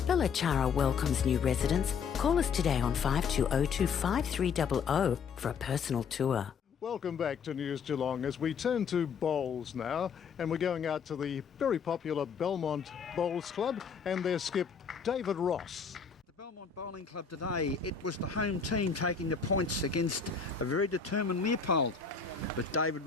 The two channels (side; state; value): right; quieter; 6.1 dB